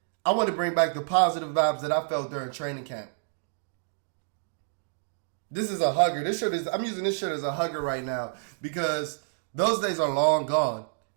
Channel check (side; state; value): left; silent; digital silence